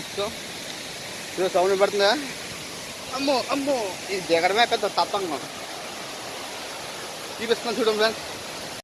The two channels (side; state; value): both; identical; correlation 1.00